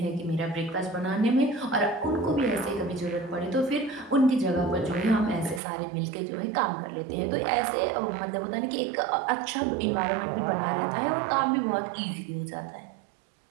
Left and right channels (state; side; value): drops out; left; at 5.6 s